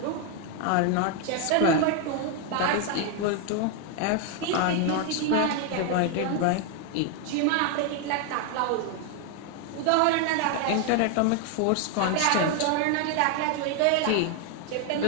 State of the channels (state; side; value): different; both; correlation 0.00